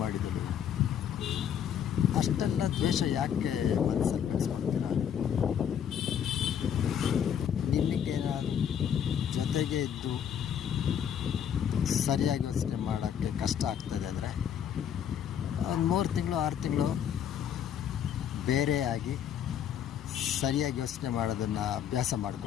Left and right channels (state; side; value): quieter; right; 8.9 dB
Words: ಮಾಡಿದಳು. ಅಷ್ಟೆಲ್ಲ ದ್ವೇಷ ಯಾಕೆ ಮನಸ್ಸಲ್ಲಿ ಬೆಳೆಸ್ಕೊಳ್ತೀರ? ನಿಮಗೇನಾದರೂ ಜೊತೆಗೆ ಇದ್ದು ಸರಿಯಾಗಿ ಯೋಚನೆ ಮಾಡೋಕ್ಕೆ ಕಷ್ಟ ಆಗ್ತದೆ ಅಂದರೆ ಒಂದು 3 ತಿಂಗಳು 6 ತಿಂಗಳು ಬೇರೆಯಾಗಿ ಸರಿಯಾಗಿ ಯೋಚನೆ ಮಾಡೋದನ್ನು ಅಭ್ಯಾಸ